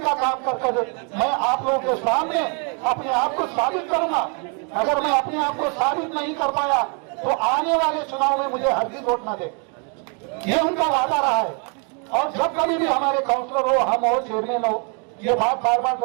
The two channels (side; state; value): left; quieter; 37.5 dB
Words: काम कर मैं आप लोगों के सामने अपने आप को साबित करूंगा अगर मैं अपने आप को साबित नहीं कर पाया तो आने वाले चुनाव में मुझे हरगिज वोट न दे। ये उनका वादा रहा है। और जब कभी भी हमारे काउंसलर हो, हम हो, चेयरमैन हो, ये बात बार बार